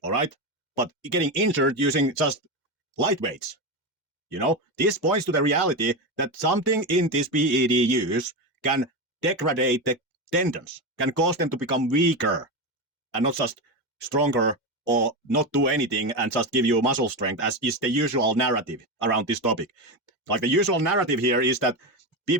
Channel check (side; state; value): both; normal; correlation 0.16